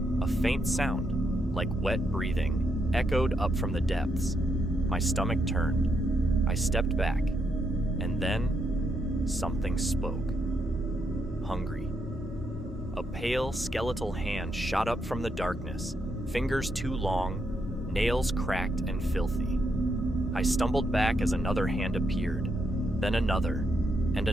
A faint sound, like wet breathing, echoed up from the depths. My stomach turned. I stepped back, and then something spoke. Hungry. A pale, skeletal hand shot up from the darkness, fingers too long, nails cracked and filthy. I stumbled back as another hand appeared, then another, and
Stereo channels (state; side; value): normal; both; correlation 0.79